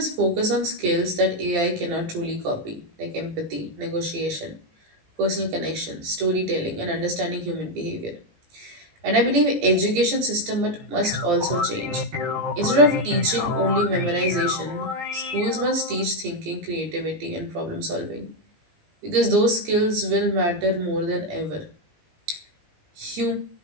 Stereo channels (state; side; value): late; left; 19 ms